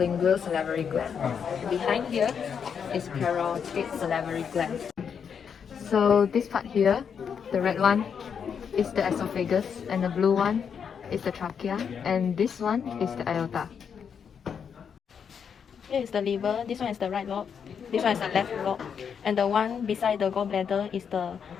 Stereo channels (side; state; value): right; quieter; 7.1 dB